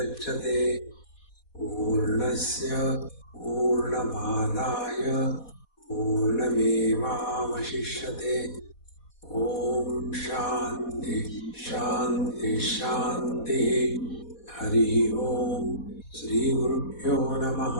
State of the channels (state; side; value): late; right; 4.1 ms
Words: Purnasya Purnamadaya Purnamevavashishyate. Om Shanti Shanti Shanti. Hari Om. Shri Gurubhyo